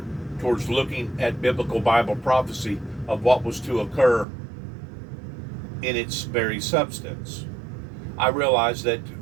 towards looking at biblical Bible prophecy of what was to occur in its very substance. I realize that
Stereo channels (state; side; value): drops out; left; at 4.2 s